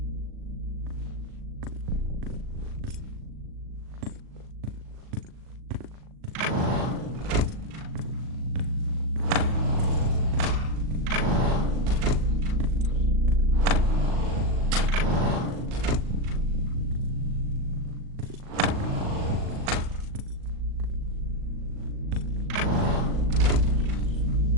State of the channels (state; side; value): late; left; 38 ms